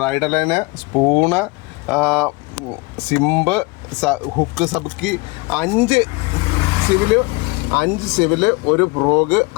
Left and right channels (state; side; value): quieter; right; 24.7 dB